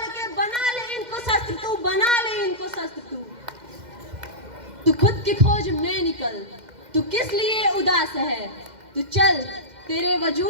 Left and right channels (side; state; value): left; late; 2.1 ms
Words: के बना ले इनको शस्त्र तू, बना ले इनको शस्त्र तू। तू खुद की खोज में निकल, तू किस लिए उदास है। तू चल तेरे